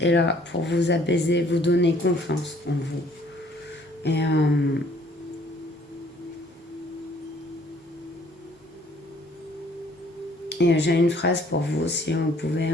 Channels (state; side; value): normal; both; correlation 0.60